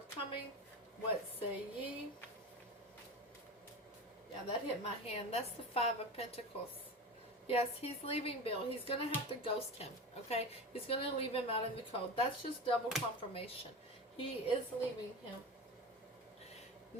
What say ye? Yeah, that hit my hand. That's the Five of Pentacles. Yes, he's leaving Bill. He's going to have to ghost him, okay? He's going to leave him out in the cold. That's just double confirmation. He is leaving him.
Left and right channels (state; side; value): normal; both; correlation 0.27